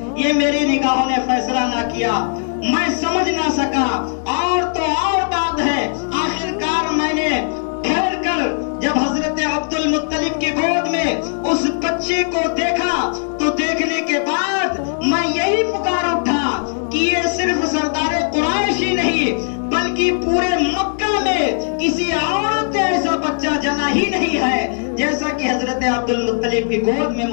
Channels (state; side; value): silent; right; digital silence